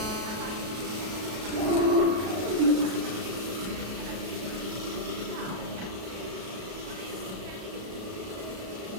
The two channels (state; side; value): late; left; 33 ms